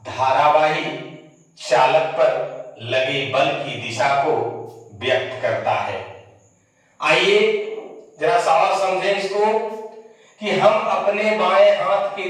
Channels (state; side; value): identical; both; correlation 1.00